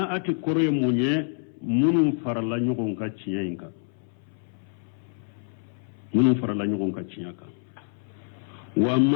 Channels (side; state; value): right; silent; 60 dB below the other